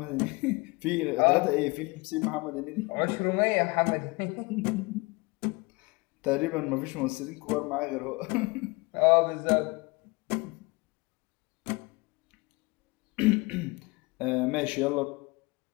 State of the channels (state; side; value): quieter; right; 25.9 dB